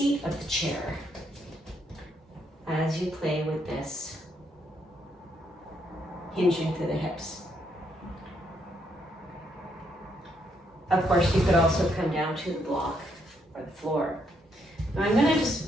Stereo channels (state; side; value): normal; both; correlation 0.75